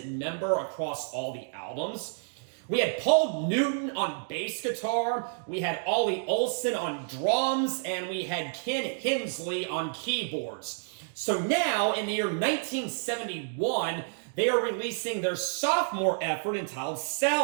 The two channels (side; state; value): left; silent; digital silence